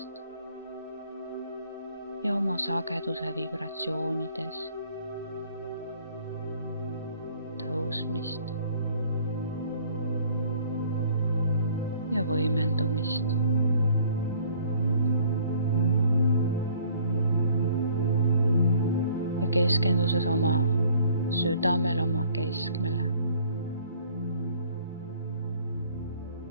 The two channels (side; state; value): both; inverted; correlation -0.57